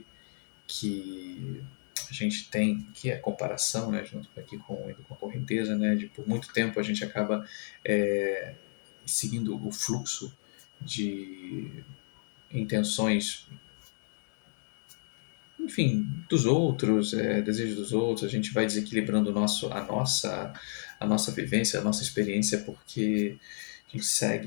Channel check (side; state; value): right; silent; digital silence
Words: que a gente tem que a comparação, né, junto aqui com a correnteza, né, de por muito tempo a gente acaba seguindo o fluxo de intenções, enfim, dos outros, desejos dos outros, a gente vai desequilibrando a nossa vivência, a nossa experiência, porque a gente